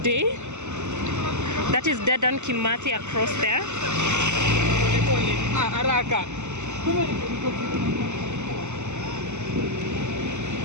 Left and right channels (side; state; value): left; late; 0.83 ms